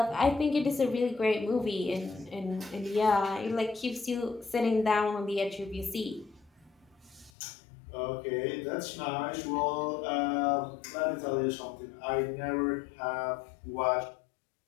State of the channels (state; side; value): drops out; right; at 7.3 s